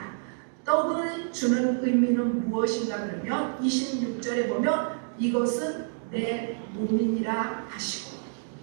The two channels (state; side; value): silent; left; digital silence